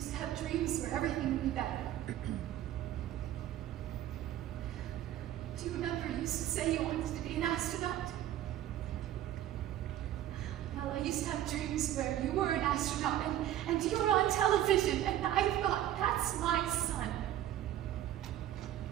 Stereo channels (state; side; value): quieter; left; 12.4 dB